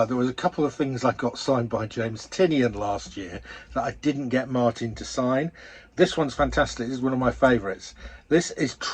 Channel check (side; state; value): both; identical; correlation 1.00